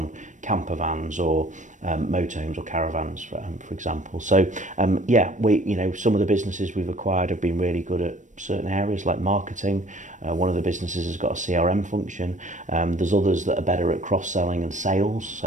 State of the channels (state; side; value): late; left; 0.36 ms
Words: camper vans or motorhomes or caravans, for example. So yeah, some of the businesses we've acquired have been really good at certain areas like marketing. One of the businesses has got a CRM function. There's others that are better at cross-selling and sales.